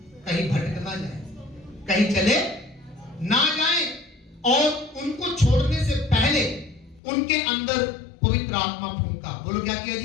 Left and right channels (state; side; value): drops out; right; at 7.0 s